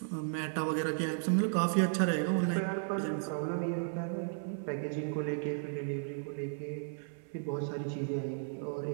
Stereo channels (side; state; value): left; silent; 55 dB below the other